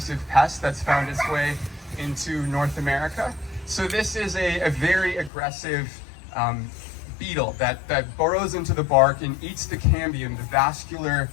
pest that's found its way into North America. So this is a very aggressive beetle that burrows into the bark and eats the cambium, the vascular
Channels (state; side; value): drops out; right; at 5.3 s